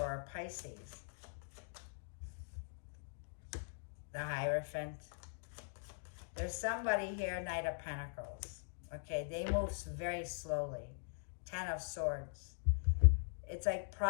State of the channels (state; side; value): silent; right; digital silence